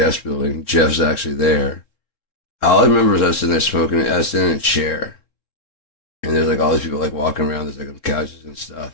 building. Jeff's actually there. All I remember is I was sitting there smoking. I was sitting in a chair, and there's like all these people like walking around. There's like on couches and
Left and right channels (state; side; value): late; right; 3.7 ms